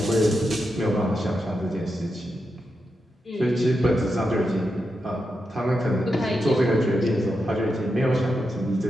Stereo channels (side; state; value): both; normal; correlation 0.87